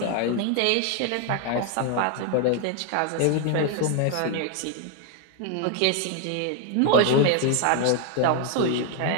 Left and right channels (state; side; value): different; both; correlation 0.00